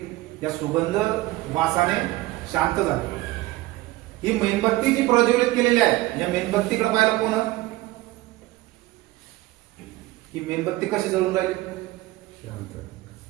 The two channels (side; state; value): left; quieter; 18.5 dB